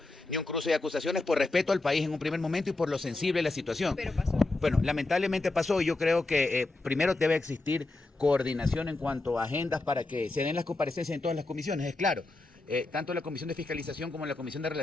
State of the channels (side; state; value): right; quieter; 3.1 dB